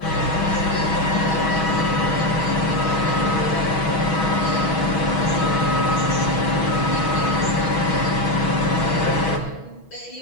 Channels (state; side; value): late; right; 6.2 ms